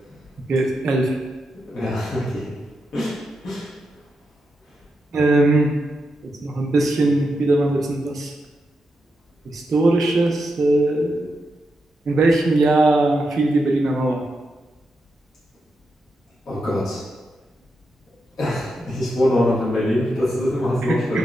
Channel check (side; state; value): both; normal; correlation 0.86